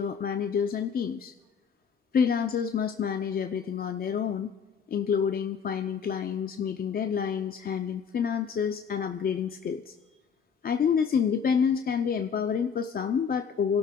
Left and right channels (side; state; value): right; quieter; 6.8 dB